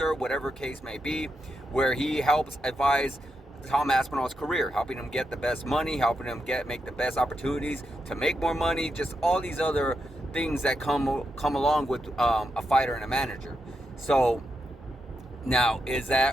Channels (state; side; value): normal; both; correlation 0.84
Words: whatever case may be, where he helps advise Tom Aspinall's career, helping him get the best money, helping him make the best opportunities to make more money, just all these other things that come along with a fighter and a manager. So now, is